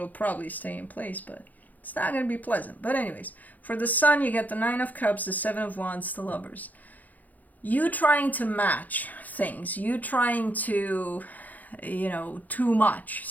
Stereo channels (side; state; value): right; late; 0.081 ms